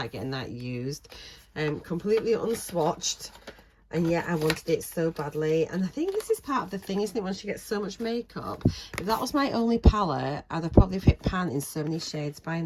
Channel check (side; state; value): both; identical; correlation 1.00